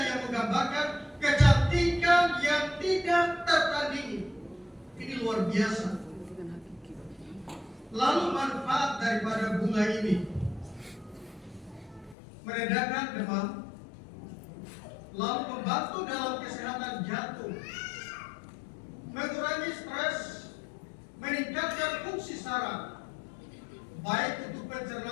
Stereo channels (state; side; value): drops out; right; at 12.2 s